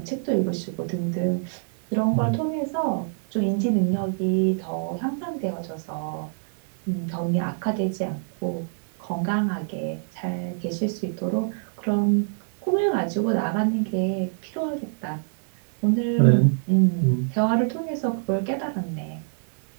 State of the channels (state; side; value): silent; left; digital silence